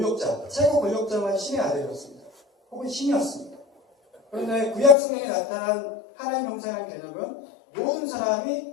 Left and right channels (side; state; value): right; drops out; at 5.0 s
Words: 최고 권력자만 신의 아들이었습니다. 혹은 신이었습니다. 그런데 구약 성경에 나타난 하나님 형상이라는 개념은 모든